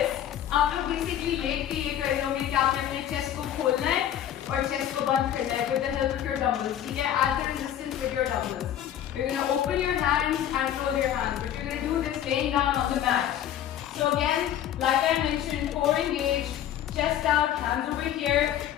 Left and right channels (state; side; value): quieter; right; 10.8 dB